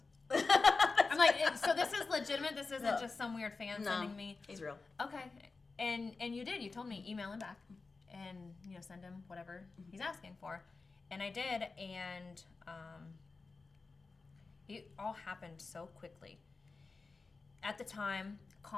I'm like, so this is legitimate? This isn't just some weird fan sending me? He's real. Okay. And you did. You told me email him back and, send him whatever he's asking for. And I did, and it all happened so quickly. At the time,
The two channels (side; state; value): right; quieter; 4.0 dB